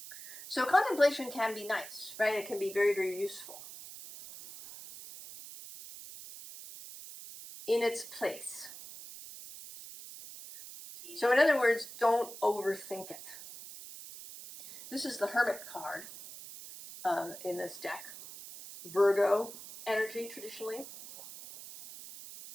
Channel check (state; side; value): noise; right; hiss, 13 dB below the sound